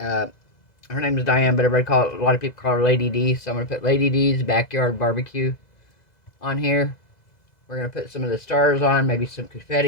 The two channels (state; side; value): late; right; 2.0 ms